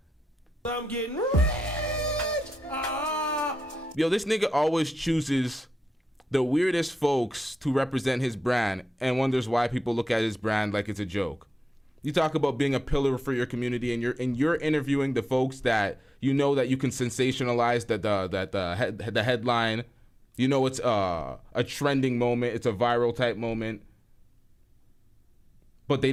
I'm getting rich. Yo, this nigga always chooses the weirdest folks to represent his brand and wonders why people look at his brand like it's a joke. You talk about being a pillar for your community, and you're interviewing the folks that you know that you can sensationalize the headline. You know it's a trending moment, it's a viral type moment, but they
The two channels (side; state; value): both; normal; correlation 0.91